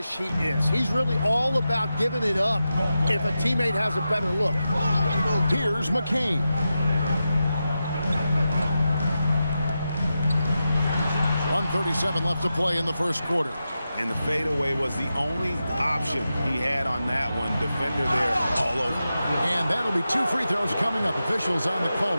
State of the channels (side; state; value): both; inverted; correlation -0.90